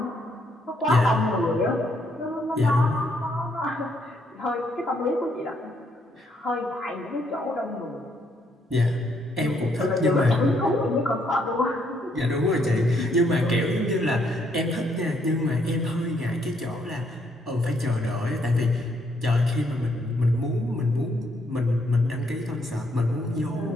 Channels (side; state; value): both; normal; correlation 0.72